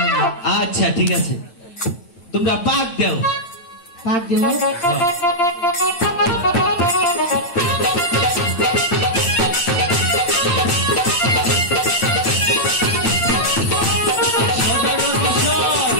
আচ্ছা ঠিক আছে তোমরা পাক দাও পাক দিব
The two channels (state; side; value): late; right; 9.2 ms